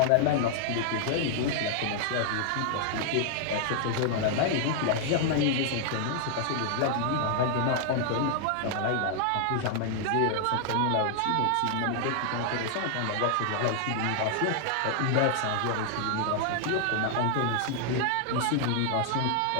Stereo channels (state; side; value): different; both; correlation 0.00